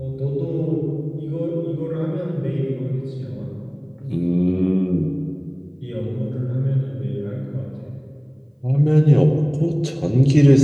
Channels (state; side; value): identical; both; correlation 1.00